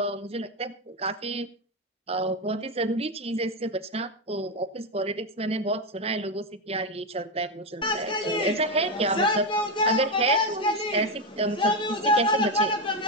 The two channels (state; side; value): normal; both; correlation 0.10